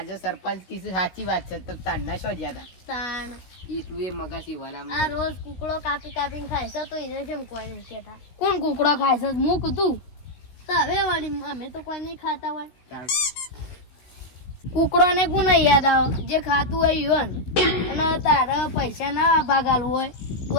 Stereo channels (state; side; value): late; right; 16 ms